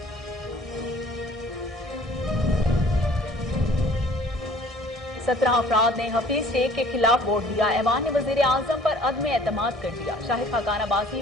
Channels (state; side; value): normal; both; correlation 0.53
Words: 17 अफराद ने हफीज शेख के खिलाफ वोट दिया। ऐवान ने वज़ीर-ए-आज़म पर अदम एतमाद कर दिया। शाहिद खाकान अब्बासी